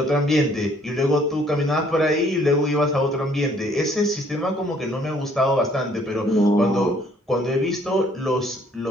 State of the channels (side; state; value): both; normal; correlation 0.62